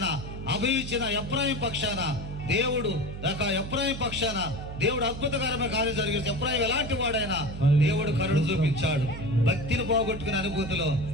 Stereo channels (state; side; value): noise; right; hum, 9 dB below the sound